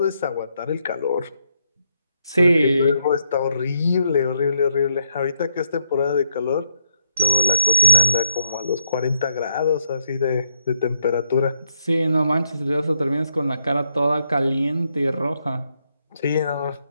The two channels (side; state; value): both; inverted; correlation -0.77